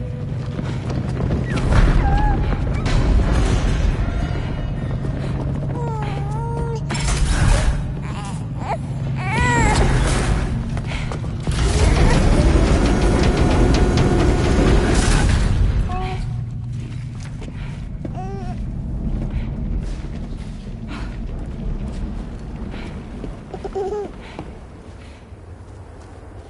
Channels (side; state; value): both; identical; correlation 1.00